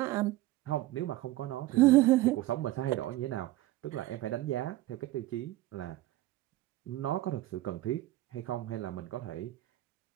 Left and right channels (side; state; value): left; quieter; 16.5 dB